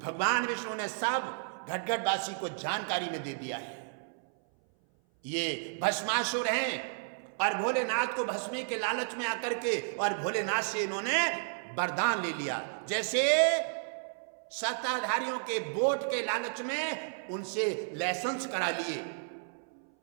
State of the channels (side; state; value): left; silent; 56 dB below the other